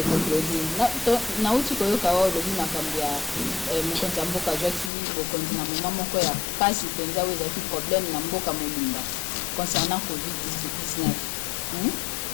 Claudine nauti koyoka wa olobi makambo ya mokonzi ya mboka azwaki bokonzi na moma moko ya pasi mpenza oyo ezalaki problème na mboka mobimba concernant Covid-19.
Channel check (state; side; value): drops out; right; at 4.9 s